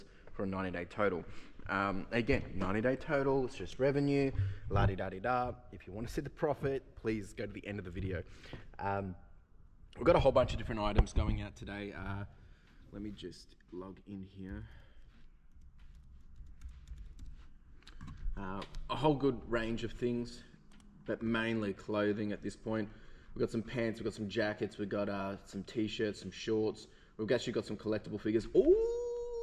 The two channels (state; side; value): identical; both; correlation 1.00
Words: for a 90-day total. Again, 90-day total, it's just revenue, la-di-da-di-da. If you want to see the profit, please go to the end of the video. We've got a whole bunch of different items going out today. Let me just log in here. A whole good range of things, but mainly clothing at this point. We've got some pants, we've got some jackets, we've got some t-shirts, some shorts. We've actually got some collectible figures.